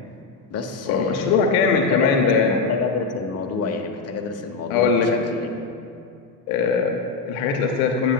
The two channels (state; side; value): quieter; right; 4.6 dB